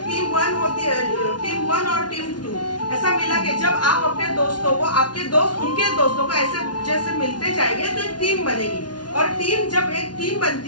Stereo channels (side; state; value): right; late; 0.70 ms